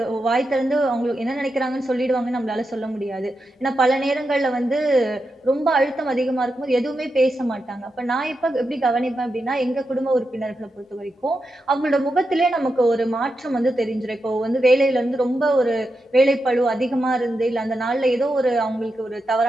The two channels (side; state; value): both; normal; correlation 0.87